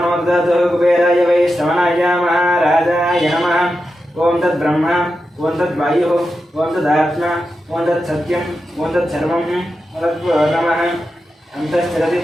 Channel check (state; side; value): normal; both; correlation 0.89